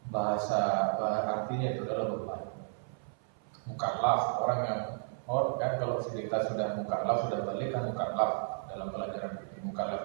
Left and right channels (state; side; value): silent; left; 56 dB below the other